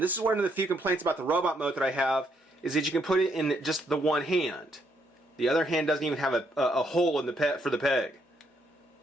this is one of the few complaints about the robot mode that I have, is that you can put it in just the one hand. The other hand doesn't even have a hole in the for the peg.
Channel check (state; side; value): normal; both; correlation 0.73